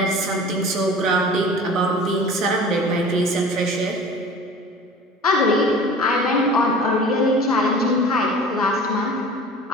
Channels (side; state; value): both; normal; correlation 0.41